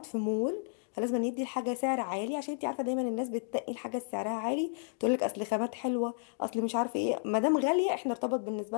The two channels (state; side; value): silent; right; digital silence